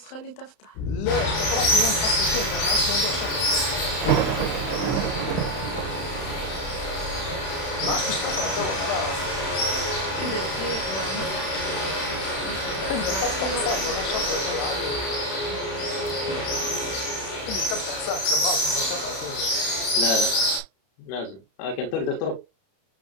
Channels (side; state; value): right; late; 31 ms